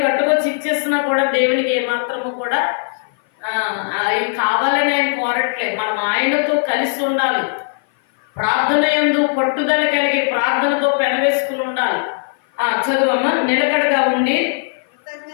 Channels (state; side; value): silent; right; 55 dB below the other